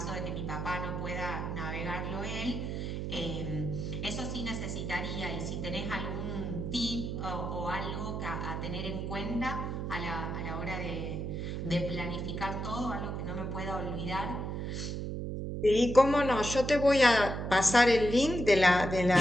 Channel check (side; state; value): right; noise; hum, 3 dB below the sound